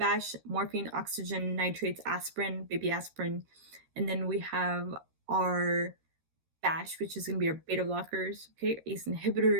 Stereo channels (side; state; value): left; late; 13 ms